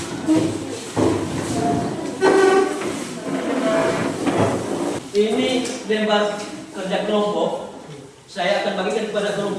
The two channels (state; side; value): identical; both; correlation 1.00